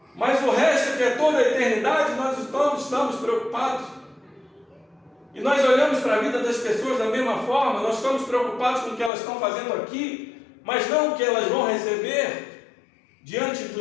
mas o resto, que é toda a eternidade, nós estamos preocupados. E nós olhamos para a vida das pessoas da mesma forma, nós estamos preocupados com o que elas estão fazendo aqui, mas não o que elas vão receber diante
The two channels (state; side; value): drops out; right; at 9.1 s